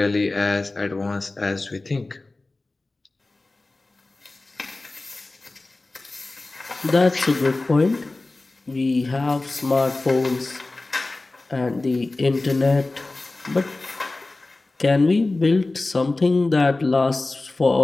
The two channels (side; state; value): right; quieter; 3.1 dB